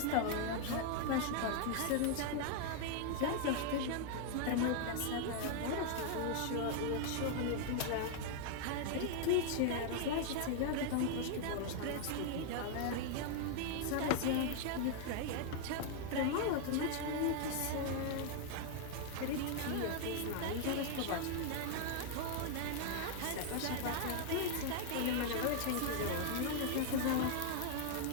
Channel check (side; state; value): both; different; correlation 0.00